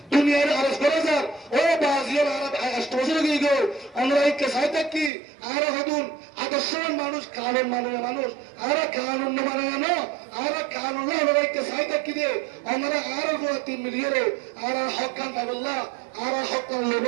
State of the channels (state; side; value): drops out; left; at 5.1 s